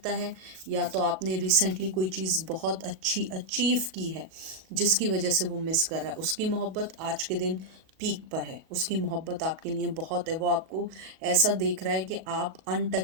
है या तो आपने रिसेंटली कोई चीज़ बहुत अच्छी अचीव की है जिसकी वजह से वो मिस कर रहा है। उसकी मोहब्बत आज के दिन पीक पर है, उसकी मोहब्बत आपके लिए बहुत है। वो आपको ऐसा देख रहा है कि आप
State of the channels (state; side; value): late; left; 37 ms